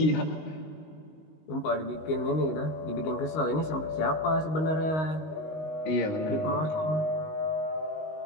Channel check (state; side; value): late; right; 19 ms